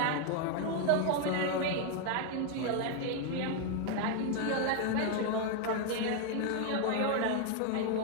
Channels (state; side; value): different; both; correlation 0.00